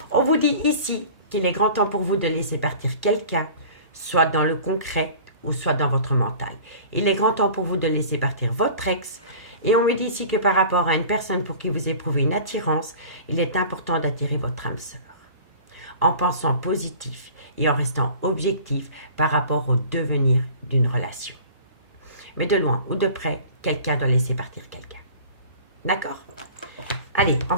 on vous dit ici qu'il est grand temps pour vous de laisser partir quelqu'un, soit dans le concret ou soit dans votre mental. Il est grand temps pour vous de laisser partir votre ex. Et on me dit ici que par rapport à une personne pour qui vous éprouvez une attirance, il est important d'attirer votre âme sœur. En pensant positif et en restant objectif par rapport au devenir d'une relation. Mais de loin ou de près, quelqu'un doit laisser partir quelqu'un. D'accord? Allez, on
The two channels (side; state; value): both; inverted; correlation -0.43